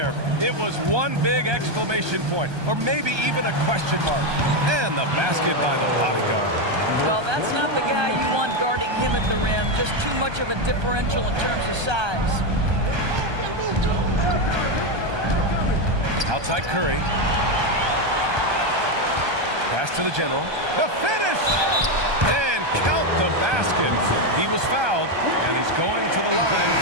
It was one big exclamation point, or maybe even a question mark. And the basket by the bodyguard. Well, that's not the guy you want guarding him at the rim. Just too much of a differential in terms of size. Outside Curry. Pass to the general. The finish! And count the basket. He was fouled, and he's going to the line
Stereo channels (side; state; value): left; late; 1.2 ms